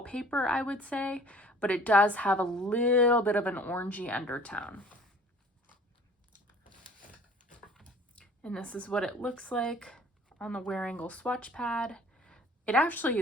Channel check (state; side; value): normal; both; correlation 0.50